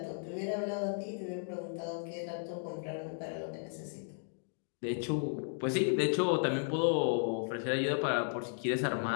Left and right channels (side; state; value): right; silent; digital silence